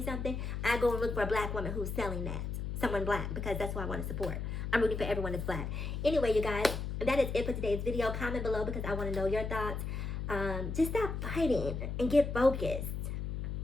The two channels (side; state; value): left; noise; hum, 4 dB below the sound